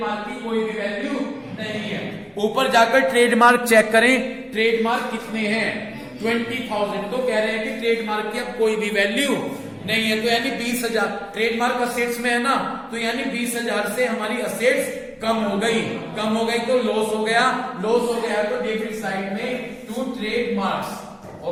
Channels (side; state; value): both; identical; correlation 1.00